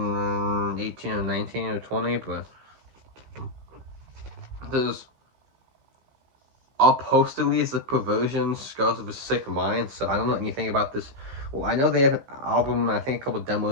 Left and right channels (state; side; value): late; left; 15 ms